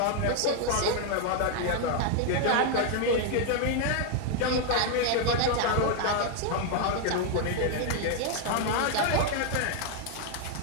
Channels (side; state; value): both; different; correlation 0.00